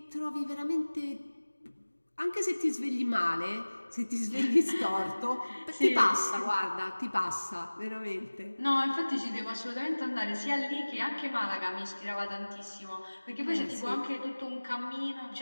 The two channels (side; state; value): both; inverted; correlation -1.00